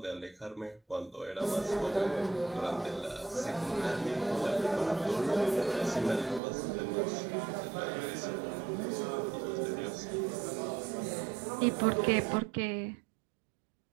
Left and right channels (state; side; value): drops out; left; at 6.4 s